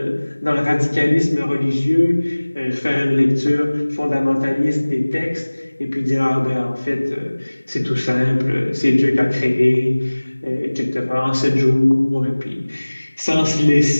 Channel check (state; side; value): inverted; both; correlation -1.00